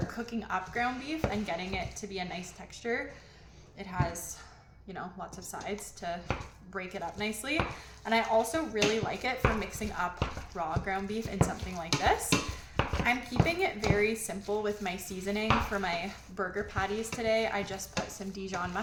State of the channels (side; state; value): both; identical; correlation 1.00